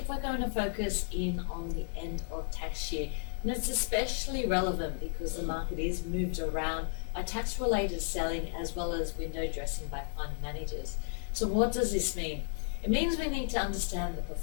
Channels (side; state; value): right; silent; digital silence